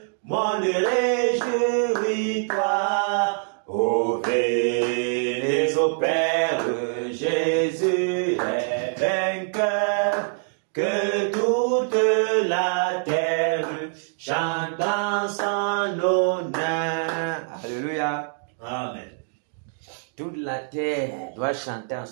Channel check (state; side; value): silent; left; 62 dB below the other